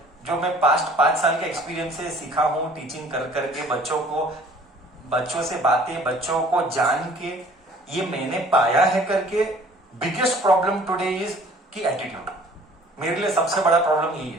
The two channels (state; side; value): normal; both; correlation 0.52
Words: जो मैं पास्ट 5 साल के एक्सपीरियंस से सीखा हूं टीचिंग कर करके बच्चों को बच्चों से बातें, बच्चों को जान के, ये मैंने पाया है करके बिगेस्ट प्रॉब्लम टुडे इज कि एटीट्यूड। मेरे लिए सबसे बड़ा प्रॉब्लम यही